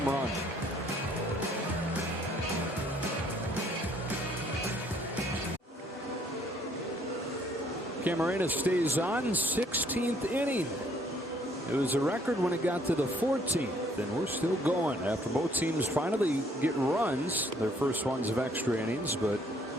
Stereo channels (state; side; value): normal; both; correlation 0.63